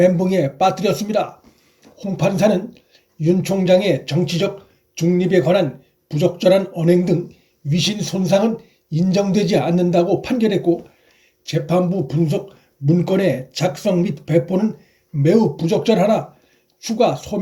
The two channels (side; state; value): both; identical; correlation 1.00